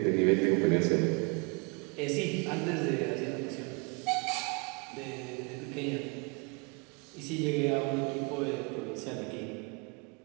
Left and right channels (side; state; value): left; quieter; 32.0 dB